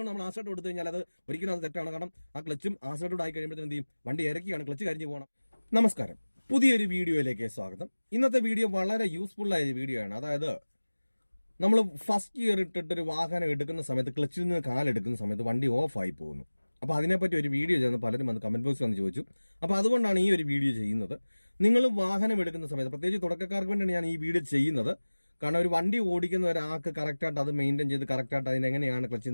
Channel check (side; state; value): both; inverted; correlation -1.00